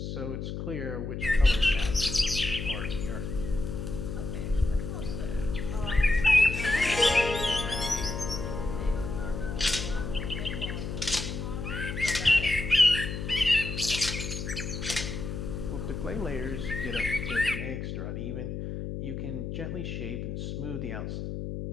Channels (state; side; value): noise; left; hum, 5 dB below the sound